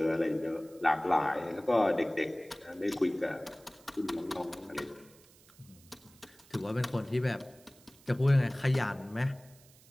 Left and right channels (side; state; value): right; noise; hiss, 26 dB below the sound